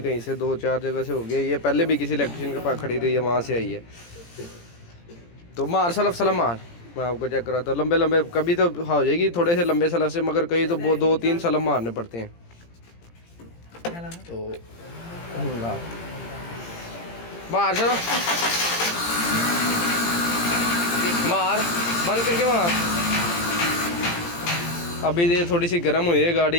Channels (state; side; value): late; right; 17 ms